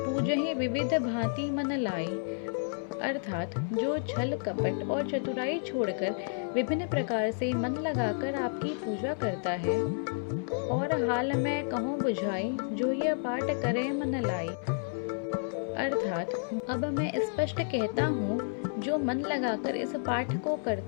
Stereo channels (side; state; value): right; silent; 57 dB below the other